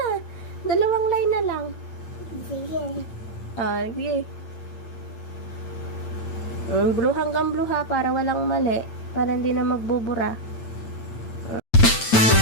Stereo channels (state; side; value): late; right; 8.8 ms